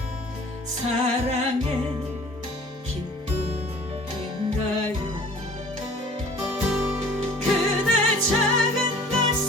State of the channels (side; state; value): both; normal; correlation 0.48